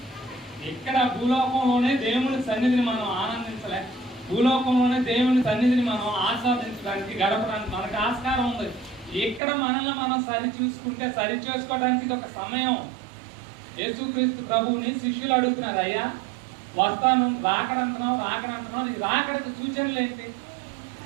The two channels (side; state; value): left; drops out; at 9.4 s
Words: ఇక్కడ భూలోకంలోనే దేవుని సన్నిధిని మనం ఆనందించలే, భూలోకంలోనే దేవుని సన్నిధిని మనం ఆస్వాదించడానికి గడపడానికి మనకు ఆస్కారం ఉంది. ఇక్కడ మనల్ని మనం సరి చేసుకోవడానికి ఇది ఒక సమయం. యేసుక్రీస్తు ప్రభువుని శిష్యులు అడుగుతున్నారు, అయ్యా వస్తాను, రాకడంటున్నావు, ఈ రాకడకు సూచనలు ఏంటి,